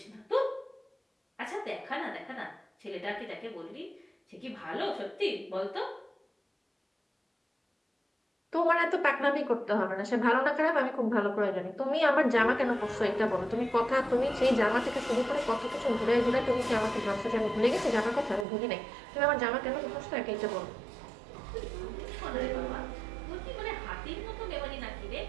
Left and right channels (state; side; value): drops out; left; at 18.4 s